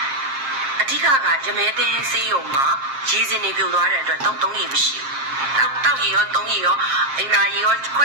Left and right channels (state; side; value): late; left; 7.5 ms